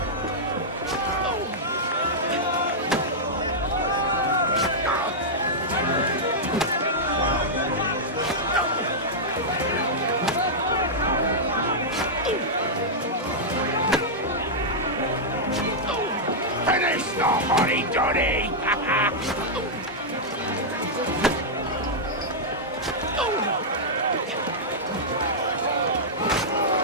Finish the honey, Johnny!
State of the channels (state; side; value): normal; both; correlation -0.08